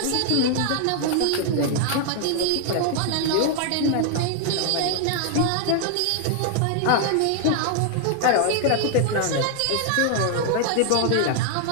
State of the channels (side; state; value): both; different; correlation 0.00